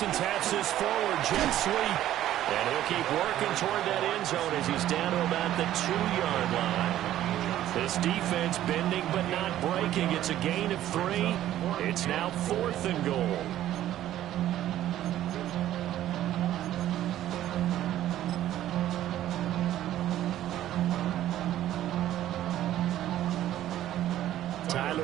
taps this forward, jet sweep. And he'll keep working toward that end zone as he's down to about the 2-yard line. This defense bending but not breaking. It's a gain of 3. It's now 4th and goal.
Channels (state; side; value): quieter; left; 12.8 dB